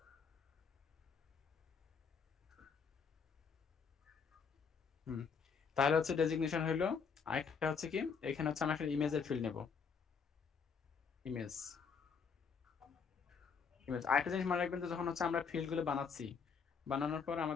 তাহলে হচ্ছে ডেজিগনেশন হইলো। আরেকটা হচ্ছে কি, এখানে হচ্ছে আমরা একটা ইমেজের ফিল্ড নেব, ইমেজ। আরেকটা জিনিস মনে রাখবেন যে যখন হচ্ছে আমরা ফিল্ড গুলো বানাচ্ছি, বানানোর পর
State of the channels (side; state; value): right; quieter; 5.9 dB